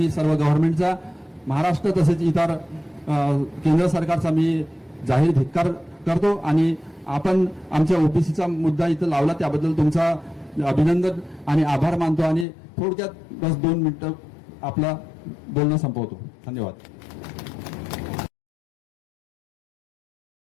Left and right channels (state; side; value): drops out; right; at 12.5 s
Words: सर्व गव्हर्नमेंटचा, महाराष्ट्र तसेच इतर केंद्र सरकारचा मी जाहीर धिक्कार करतो. आणि आपण आमच्या OBCचा मुद्दा इथं लावला त्याबद्दल तुमचा अभिनंदन आणि आभार मानतो. आणि थोडक्यात बस 2 मिनिटं आपला बोलणं संपवतो. धन्यवाद.